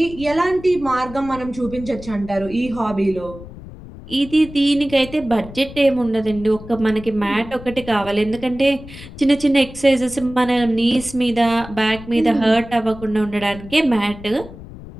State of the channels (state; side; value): noise; left; rumble, 15 dB below the sound